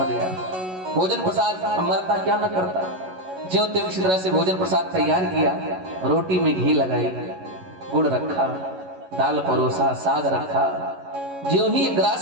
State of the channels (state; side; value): late; left; 11 ms